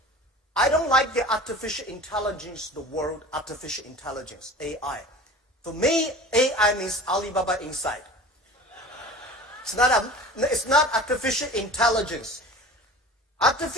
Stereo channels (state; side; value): normal; both; correlation 0.39